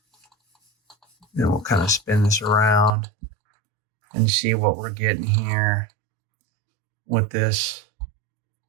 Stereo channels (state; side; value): drops out; left; at 2.9 s